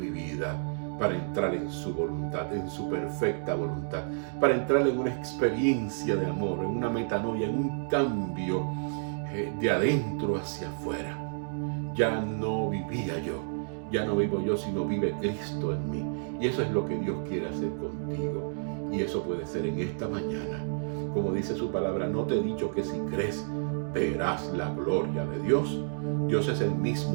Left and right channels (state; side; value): silent; left; digital silence